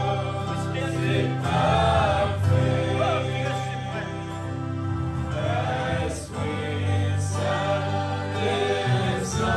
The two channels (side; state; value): both; identical; correlation 1.00